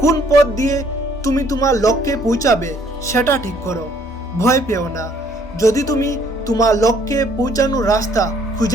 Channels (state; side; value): normal; both; correlation 0.63